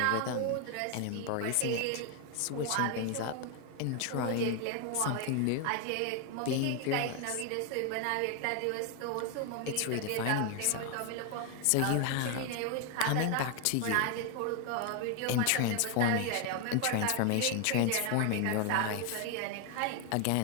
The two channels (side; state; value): both; different; correlation 0.01